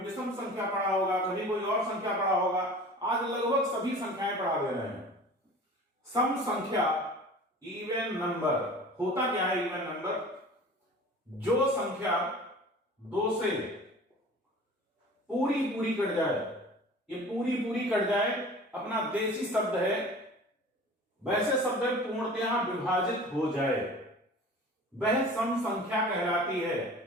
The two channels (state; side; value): normal; both; correlation 0.41